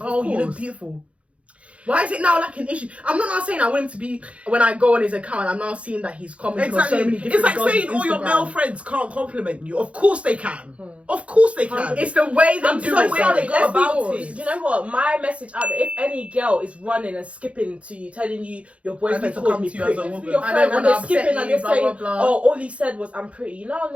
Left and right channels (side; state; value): left; late; 0.063 ms